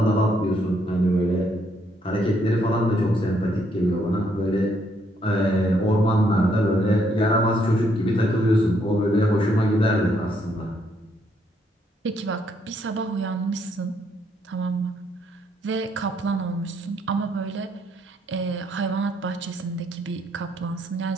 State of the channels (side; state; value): both; normal; correlation 0.72